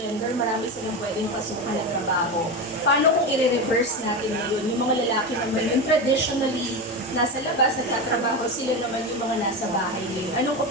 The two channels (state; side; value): normal; both; correlation 0.19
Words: marami silang pwedeng pasukan ng trabaho. Paano kung i-reverse natin ngayon? Yung mga lalaki naman yung traditionally nasa labas, nagtatrabaho, sila naman yung mga nasa bahay ngayon. Anong